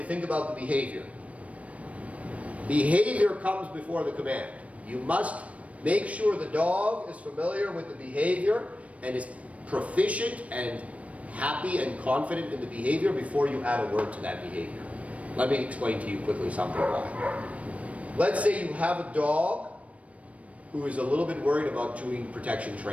think about the behavior. Behavior comes before the command. You must make sure the dog is familiar with the behavior and is proficient and happy and confident in the behavior before you add a word to that behavior. Let me explain to you quickly something why. Let's say you have a dog who is a little bit worried about doing protection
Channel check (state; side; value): late; left; 0.065 ms